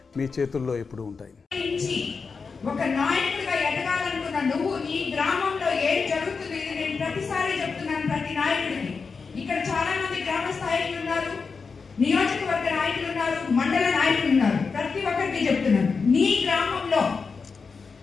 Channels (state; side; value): quieter; right; 5.0 dB